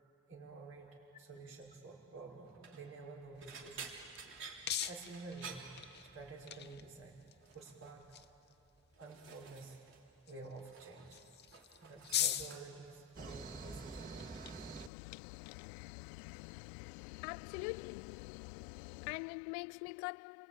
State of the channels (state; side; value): drops out; right; at 14.9 s